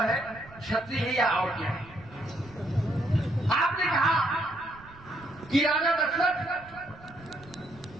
है, क्षत्रिय है या और क्या है। आपने कहा कि राजा दशरथ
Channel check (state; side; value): noise; right; rumble, 22 dB below the sound